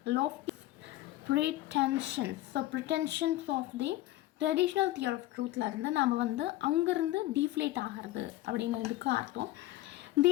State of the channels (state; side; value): quieter; right; 16.0 dB